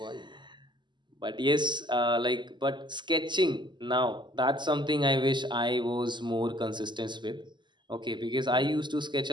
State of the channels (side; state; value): left; late; 0.22 ms